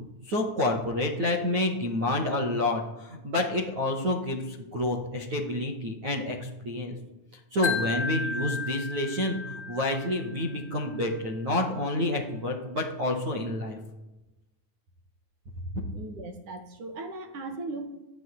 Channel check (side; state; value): left; late; 9.3 ms